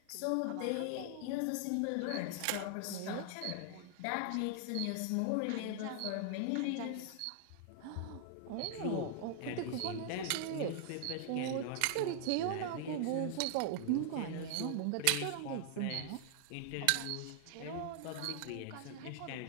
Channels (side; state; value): both; different; correlation 0.00